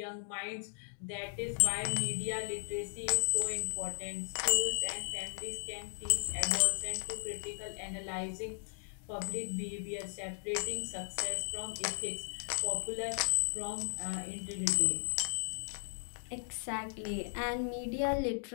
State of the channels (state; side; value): silent; right; digital silence